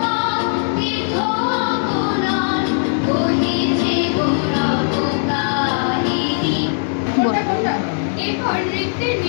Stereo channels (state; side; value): silent; right; digital silence